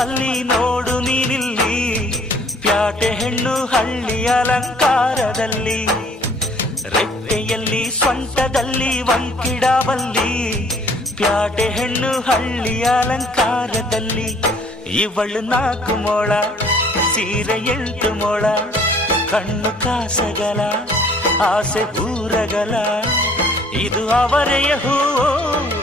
ನೋಡು ನೀನಿಲ್ಲಿ, ಪ್ಯಾಟೆ ಹೆಣ್ಣು ಹಳ್ಳಿ ಅಲಂಕಾರದಲ್ಲಿ, ರೆಟ್ಟೆಯಲ್ಲಿ ಸೊಂಟದಲ್ಲಿ ವಂಕಿಡಬಲ್ಲಿ, ಪ್ಯಾಟೆ ಹೆಣ್ಣು ಹಳ್ಳಿ ಅಲಂಕಾರದಲ್ಲಿ. ಇವಳು 4 ಮೊಳ ಸೀರೆ 8 ಮೊಳ, ಕಣ್ಣು ಕಾಸಗಲ ಆಸೆ ಊರಗಲ, ಇದು ಅವರೆಯ ಹೂವೋ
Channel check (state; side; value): normal; both; correlation 0.57